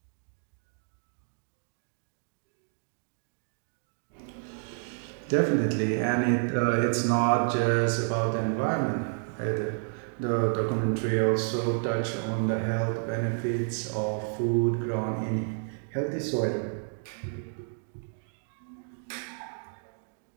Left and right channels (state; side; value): silent; left; 58 dB below the other